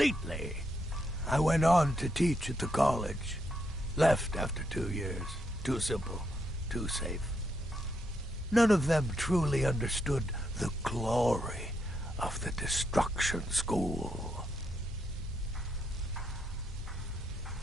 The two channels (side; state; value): both; normal; correlation 0.79